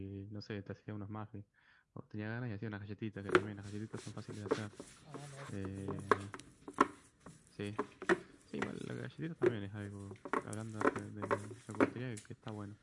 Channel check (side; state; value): both; identical; correlation 1.00